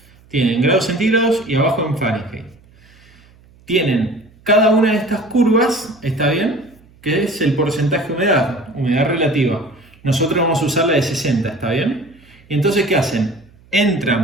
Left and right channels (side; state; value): right; noise; hum, 28 dB below the sound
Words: tienen grados centígrados y abajo en Fahrenheit. Tienen cada una de estas curvas, ¿está bien?, que es el porcentaje de humedad, humedad relativa. Nosotros vamos a usar la de 60, ¿está bien? Y entonces, ¿qué hacen?